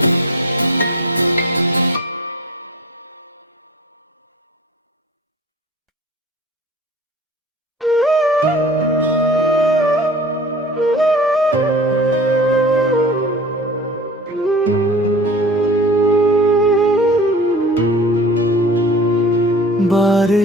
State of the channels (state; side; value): normal; both; correlation 0.40